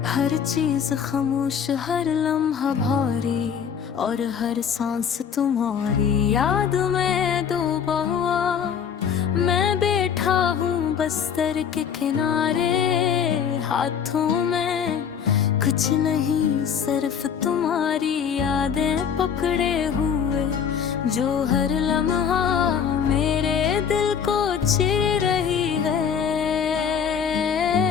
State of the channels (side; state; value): right; quieter; 7.5 dB